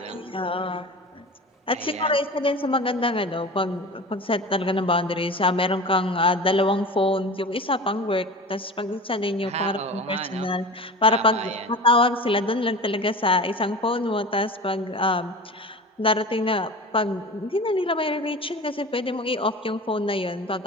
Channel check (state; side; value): normal; both; correlation 0.34